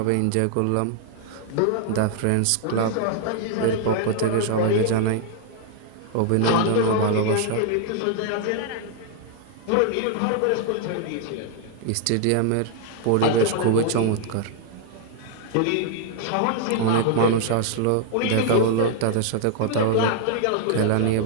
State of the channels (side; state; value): both; different; correlation 0.00